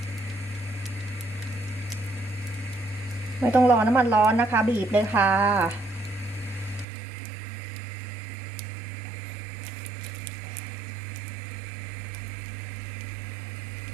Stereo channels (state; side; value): drops out; left; at 6.9 s